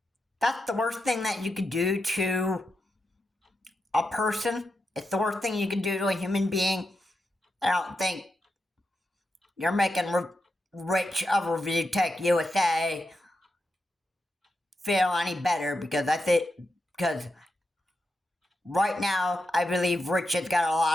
that's the worst thing that you could do to a person. It's the worst thing you can do to a human being. I don't think you're making Rich of Review Tech USA feel any better, because because right now I believe Rich has got a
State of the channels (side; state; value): both; normal; correlation 0.87